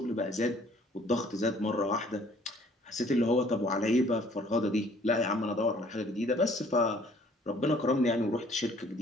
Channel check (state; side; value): normal; both; correlation 0.58